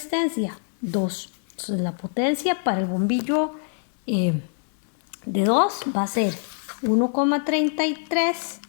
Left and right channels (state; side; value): silent; right; 62 dB below the other